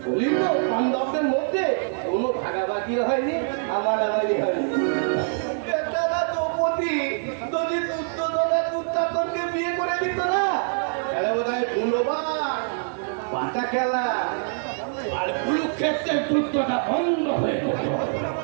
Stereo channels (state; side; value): silent; left; digital silence